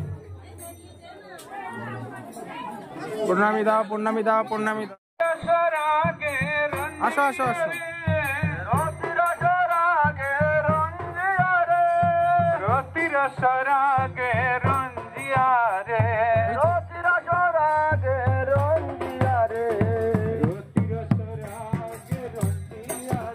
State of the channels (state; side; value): identical; both; correlation 1.00